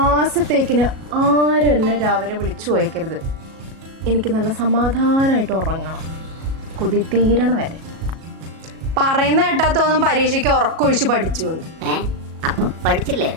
ആരും എന്നെ രാവിലെ വിളിച്ചു പോയേക്കരുത്. എനിക്ക് നല്ല സമാധാനമായിട്ട് ഉറങ്ങണം, കൊതി തീരണ വരെ. പറയുന്ന കേട്ടാത്തൊന്നും പരീക്ഷയ്ക്ക് ഉറക്കൊഴിച്ച് പഠിച്ചു പഠിച്ചില്ലേ?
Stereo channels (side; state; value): left; late; 37 ms